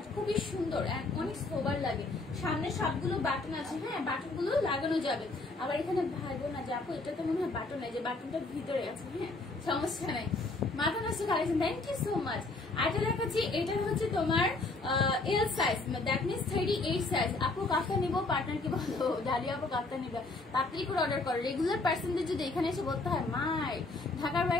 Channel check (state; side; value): quieter; right; 3.3 dB